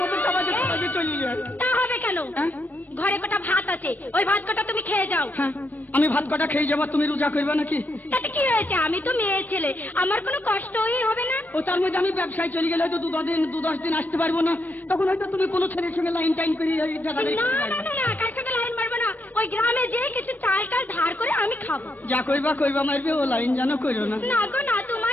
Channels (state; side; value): late; right; 0.085 ms